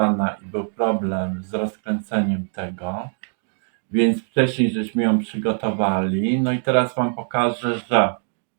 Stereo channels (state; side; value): silent; left; 56 dB below the other